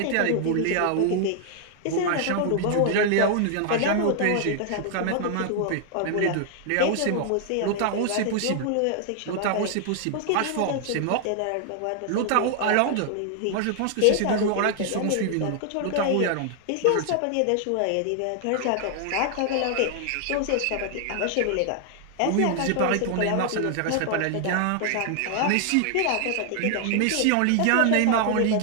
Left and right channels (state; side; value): different; both; correlation 0.00